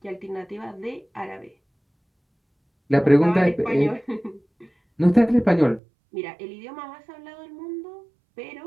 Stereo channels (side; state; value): left; drops out; at 5.8 s